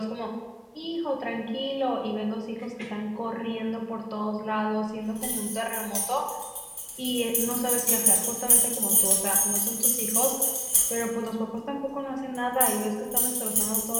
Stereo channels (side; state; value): both; identical; correlation 1.00